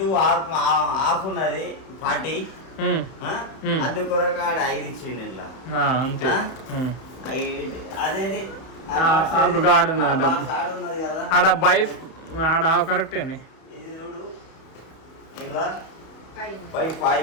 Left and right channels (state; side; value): late; right; 31 ms